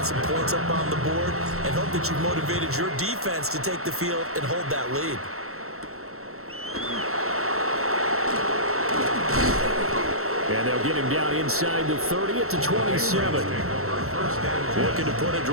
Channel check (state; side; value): late; left; 0.63 ms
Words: some points up on the board, and hope that you've motivated your defense to take the field and hold that lead. And they'll get him down inside the 30 at the 27. Looking to put a